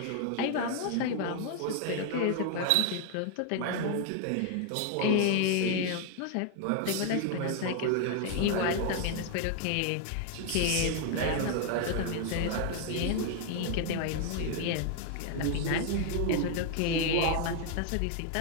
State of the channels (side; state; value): both; different; correlation 0.00